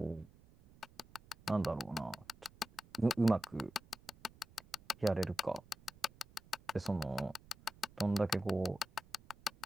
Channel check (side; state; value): right; noise; rumble, 24 dB below the sound